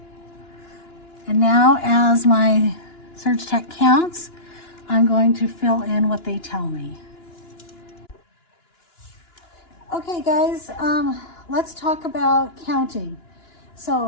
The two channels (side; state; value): right; late; 2.9 ms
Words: And now as my Surge Tech counts, I'm going to fill in what they tell me. Okay guys, let's talk about counting.